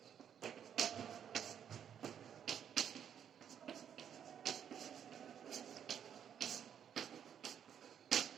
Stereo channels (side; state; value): left; quieter; 8.7 dB